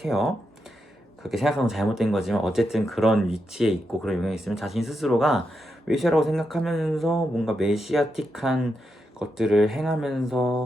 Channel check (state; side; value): normal; both; correlation 0.85